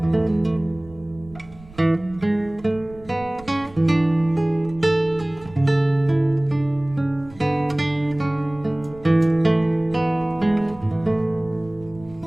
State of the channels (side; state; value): right; noise; rumble, 22 dB below the sound